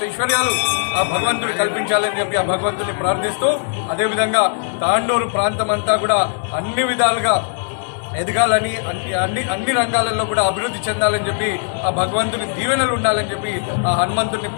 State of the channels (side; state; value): right; silent; 61 dB below the other